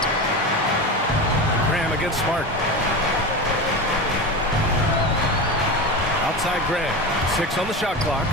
Graham against Smart. Outside Graham. 6 on the shot clock.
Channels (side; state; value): both; normal; correlation 0.24